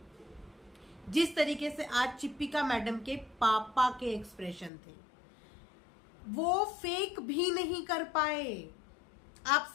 जिस तरीके से आज चिप्पिका मैडम के पापा के एक्सप्रेशन थे? वो फेक भी नहीं कर पाए। आप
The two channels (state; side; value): drops out; right; at 4.7 s